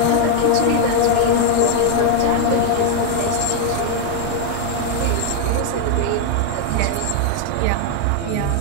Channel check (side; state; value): both; different; correlation 0.00